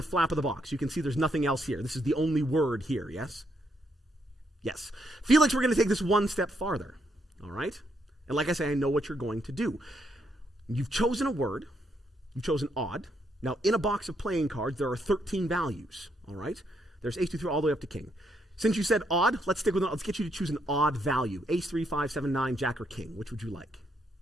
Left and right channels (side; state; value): both; normal; correlation 0.76